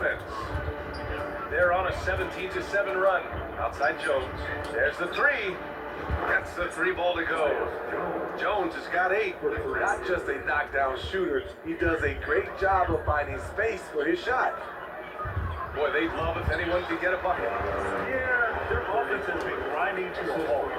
They're on a 17-7 run. Outside Jones. There's the 3. That's the 3 ball to go. Jones has got 8. Not just a knockdown shooter, he does a great job of finding space for his shot. Boy, they'd love if anyone could get a bucket. Yeah, their offense has been grinding to a halt.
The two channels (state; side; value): identical; both; correlation 1.00